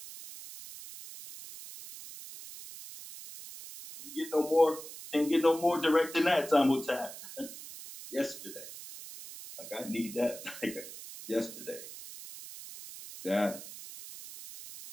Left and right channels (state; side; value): noise; right; hiss, 13 dB below the sound